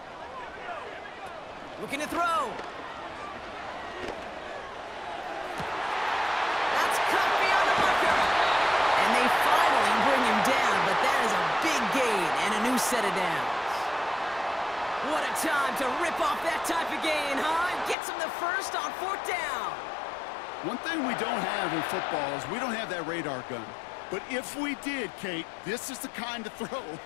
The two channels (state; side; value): drops out; right; at 17.9 s